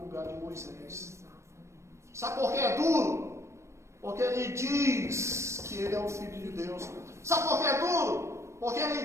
lugar de Moisés. Sabe por que é duro? Porque ele diz que ele é o Filho de Deus. Sabe por que é duro? Porque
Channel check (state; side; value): late; left; 0.13 ms